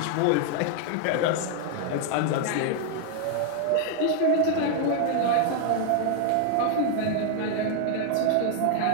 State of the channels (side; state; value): both; different; correlation 0.00